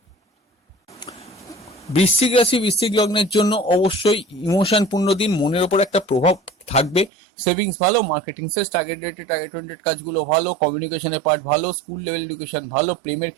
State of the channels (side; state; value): left; drops out; at 7.1 s